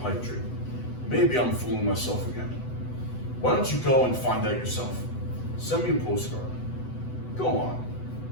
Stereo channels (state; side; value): late; right; 8.0 ms